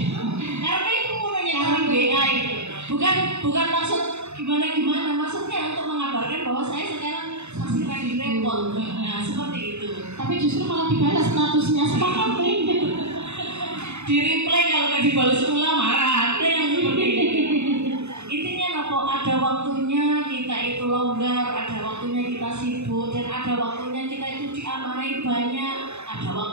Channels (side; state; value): left; late; 0.81 ms